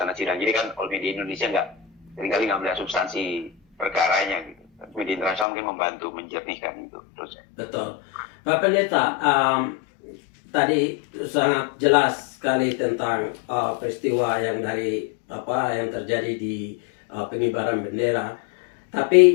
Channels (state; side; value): drops out; right; at 5.5 s